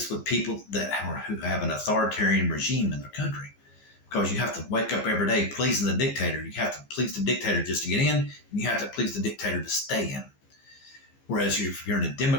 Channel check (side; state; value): right; late; 15 ms